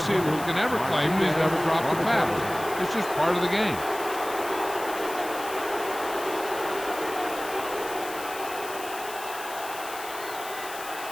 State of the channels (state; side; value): noise; left; hiss, 13 dB below the sound